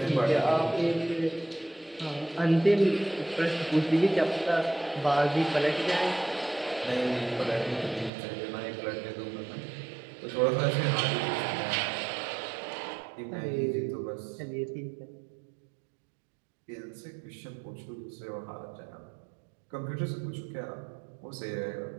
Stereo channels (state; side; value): drops out; left; at 8.1 s